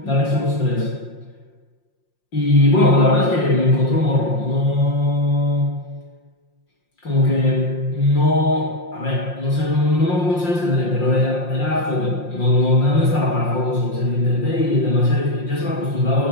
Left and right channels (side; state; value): right; late; 5.6 ms